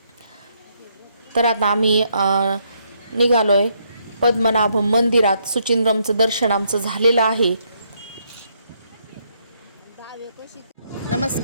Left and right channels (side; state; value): both; inverted; correlation -0.74